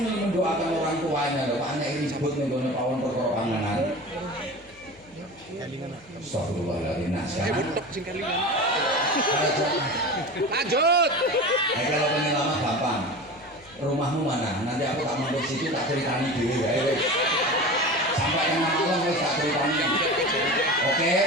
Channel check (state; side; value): noise; left; hum, 28 dB below the sound